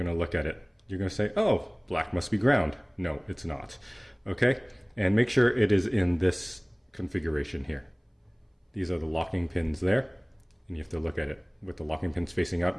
to look at it. You're going to say, oh, black must be ground. No, it's not. Okay? And make sure it is in this configuration here. These are the locking pins there. And you have to look at it with the locking pins facing up,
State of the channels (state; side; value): identical; both; correlation 1.00